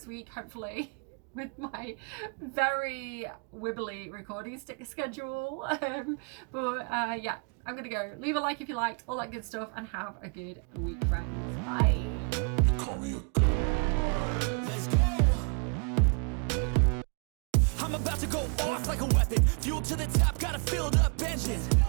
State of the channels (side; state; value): left; quieter; 38.7 dB